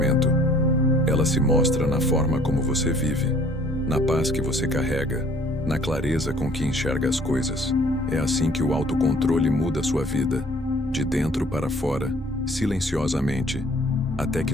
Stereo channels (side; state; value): both; normal; correlation 0.56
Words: Ela se mostra na forma como você vive, na paz que você carrega, na clareza com que enxerga as coisas. É assim que o autocontrole muda sua vida, de dentro para fora, silenciosamente, até